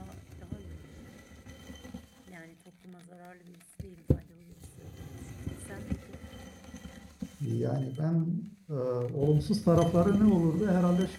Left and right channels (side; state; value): both; identical; correlation 1.00